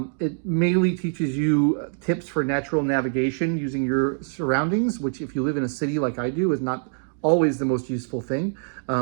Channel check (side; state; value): left; silent; digital silence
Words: It mainly teaches you tips for natural navigation using your surroundings, which if you live in a city like I do is not always the most useful thing,